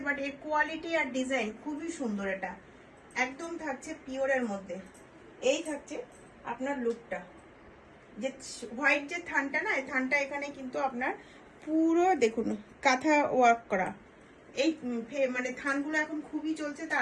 বাট এর কোয়ালিটি আর ডিজাইন খুবই সুন্দর। এটা একদম থাকছে পিওরের মধ্যে। এই থাকছে আপনার লুকটা, যে হোয়াইট যে থানটা না, এই থানটা এখানে কিন্তু আপনার পুরো দেখুন কাঁথা ওয়ার্ক করা। এই মানে থানগুলো এখন খুবই চলছে,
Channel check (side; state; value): both; identical; correlation 1.00